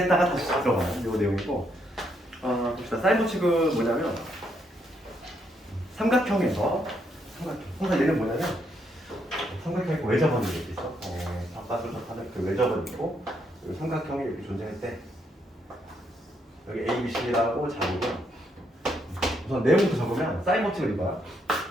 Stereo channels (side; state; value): both; normal; correlation 0.76